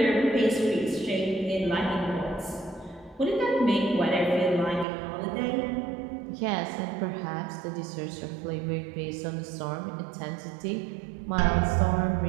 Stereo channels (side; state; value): left; drops out; at 4.9 s